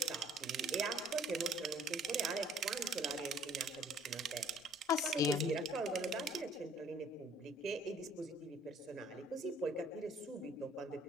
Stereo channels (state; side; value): normal; both; correlation 0.58